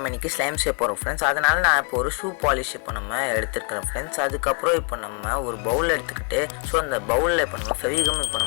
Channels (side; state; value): right; quieter; 37.5 dB